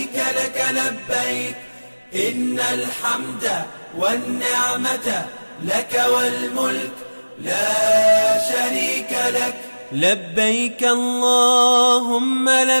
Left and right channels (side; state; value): both; inverted; correlation -1.00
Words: لك لبيك إن الحمد والنعمة لك والملك لا شريك لك. لبيك اللهم